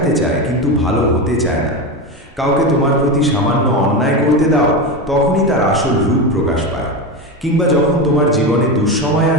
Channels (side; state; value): both; normal; correlation 0.18